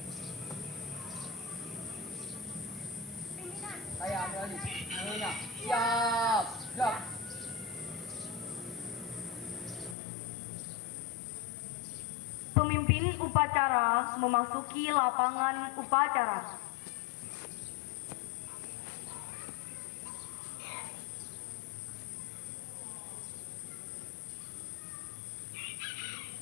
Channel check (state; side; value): drops out; right; at 10.0 s